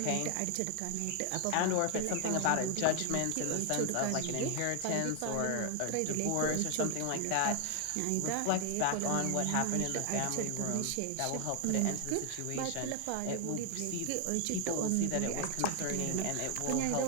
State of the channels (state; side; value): different; both; correlation 0.00